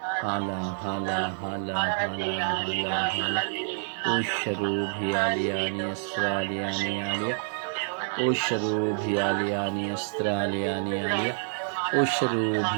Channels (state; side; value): silent; left; 60 dB below the other